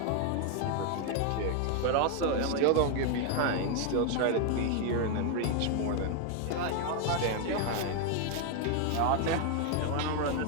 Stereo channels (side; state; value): both; different; correlation 0.00